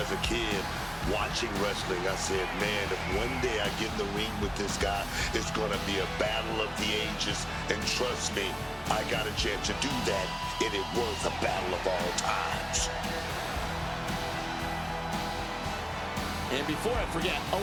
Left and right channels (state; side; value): identical; both; correlation 1.00